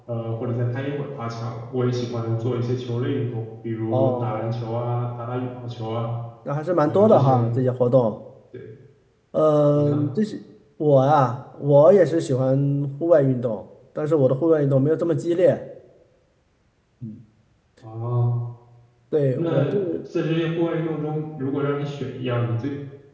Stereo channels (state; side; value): identical; both; correlation 1.00